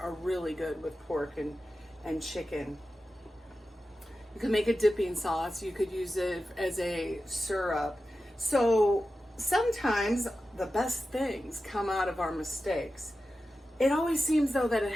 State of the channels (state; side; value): normal; both; correlation 0.93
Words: really good with pork and chicken. You could make a dipping sauce. You could use it as a syrup. So sometimes the best things come out of our mistakes. It always seems though that it